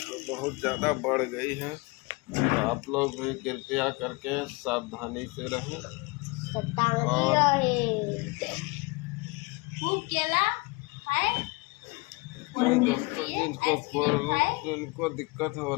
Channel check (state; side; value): quieter; right; 26.0 dB